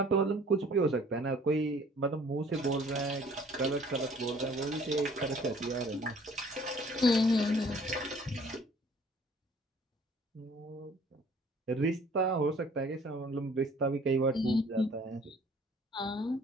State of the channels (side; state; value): both; normal; correlation 0.55